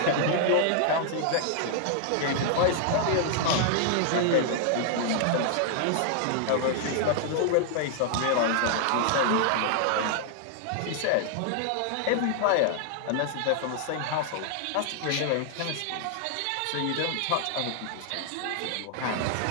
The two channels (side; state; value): both; different; correlation -0.01